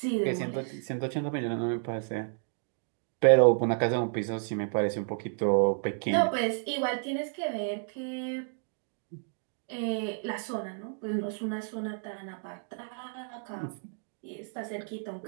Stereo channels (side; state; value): left; silent; digital silence